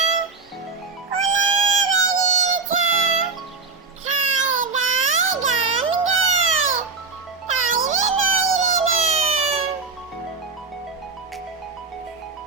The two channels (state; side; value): quieter; left; 4.5 dB